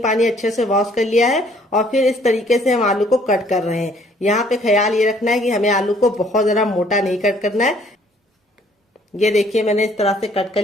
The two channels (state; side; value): normal; both; correlation 0.61